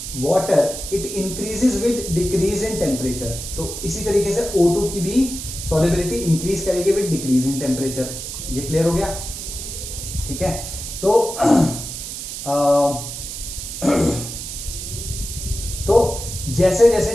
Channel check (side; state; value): right; noise; hiss, 8 dB below the sound